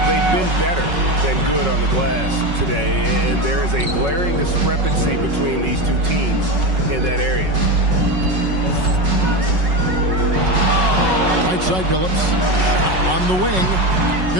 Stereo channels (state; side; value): late; left; 5.4 ms